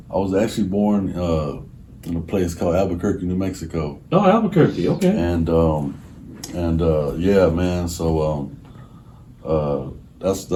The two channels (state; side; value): identical; both; correlation 1.00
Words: was actually born in a place called Albuquerque, New Mexico, Oh, Albuquerque. Okay. and yeah, man. So